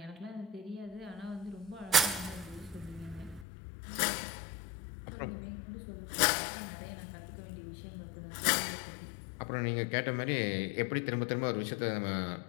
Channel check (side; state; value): right; drops out; at 3.5 s